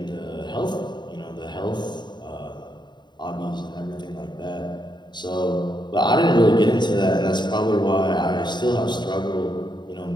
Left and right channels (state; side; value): late; right; 0.21 ms